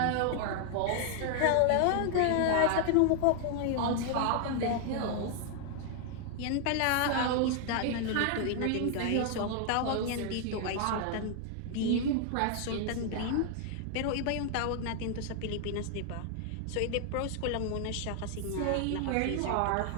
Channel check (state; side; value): different; both; correlation 0.00